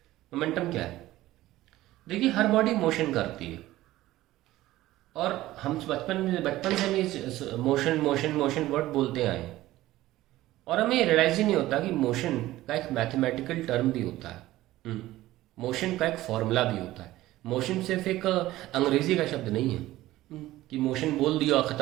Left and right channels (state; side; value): quieter; left; 16.1 dB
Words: मोमेंटम क्या है? देखिए, हर बॉडी मोशन करती है और हम बचपन से भी मोशन मोशन मोशन वर्ड बोलते आए हैं और हमें रियलाइज ही नहीं होता कि मोशन का एक मैथमेटिकल टर्म भी होता है, मोशन का एक फॉर्मूला भी होता है। मोशन सिर्फ एक अंग्रेजी का शब्द नहीं है कि मोशन बोल दिया और